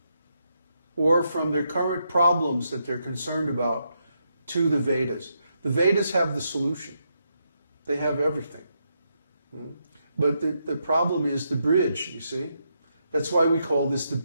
or from their current problems that they're concerned about to the Vedas. The Vedas have the solution. They have everything. But the problem is the bridge, you see. That's why we call this the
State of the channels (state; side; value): inverted; both; correlation -0.80